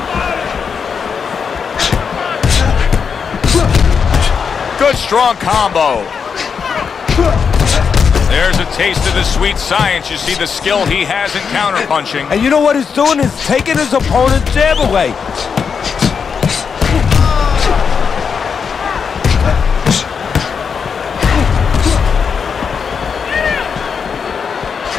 Good strong combo. There's a taste of the sweet science. You see the skill he has in counterpunching. And you know what he's doing? He's taking his opponent's jab away.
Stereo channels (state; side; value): quieter; right; 6.2 dB